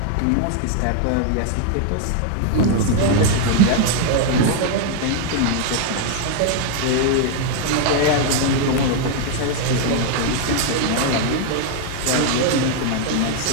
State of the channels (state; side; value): different; both; correlation 0.00